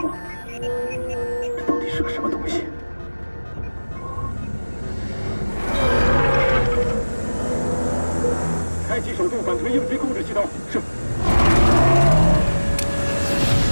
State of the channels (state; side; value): inverted; both; correlation -1.00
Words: 这到底是个什么东西？开启手动反推应急控制系统。是。